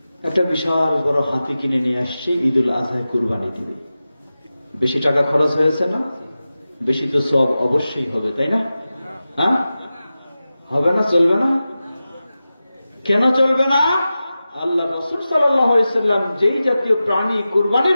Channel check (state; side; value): inverted; both; correlation -0.94